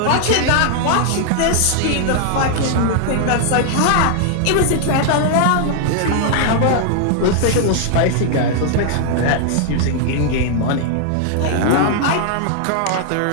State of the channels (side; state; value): both; different; correlation 0.00